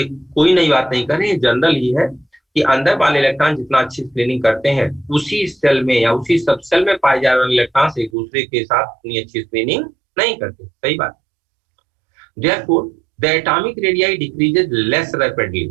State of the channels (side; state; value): left; drops out; at 8.1 s